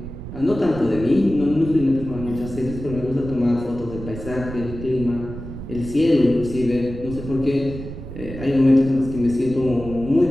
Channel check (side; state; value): right; noise; rumble, 10 dB below the sound